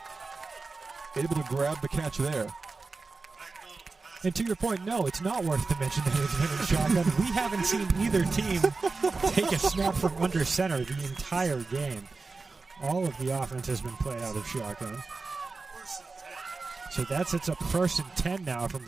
able to grab the catch there. And to your point, no, it's not worth to mention that it's been in shotgun. We haven't seen either team take a snap from under center the entire game. All of the offense has been played out of shotgun. So that sets up 1st and 10 now from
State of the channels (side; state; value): left; quieter; 4.0 dB